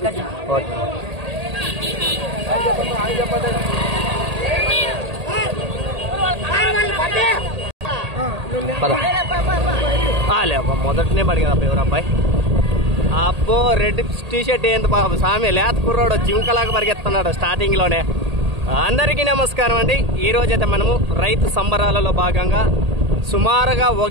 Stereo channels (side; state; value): left; late; 1.8 ms